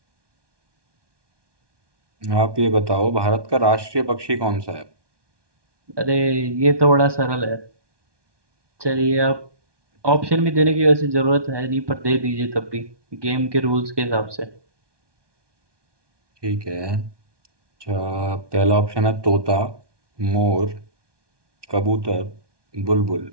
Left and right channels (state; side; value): late; left; 1.2 ms